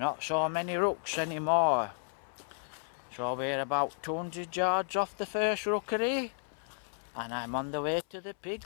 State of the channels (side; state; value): right; silent; 56 dB below the other